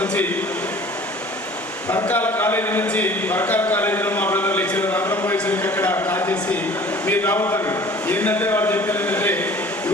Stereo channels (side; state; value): both; normal; correlation 0.47